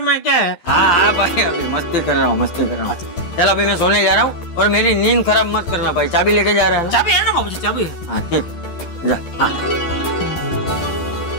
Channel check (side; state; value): right; late; 12 ms